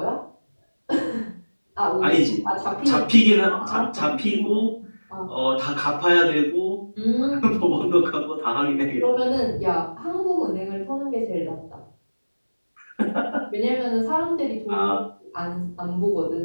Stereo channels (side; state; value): both; inverted; correlation -1.00